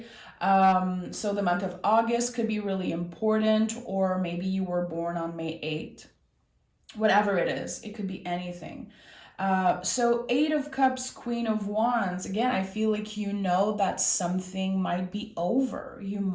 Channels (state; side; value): identical; both; correlation 1.00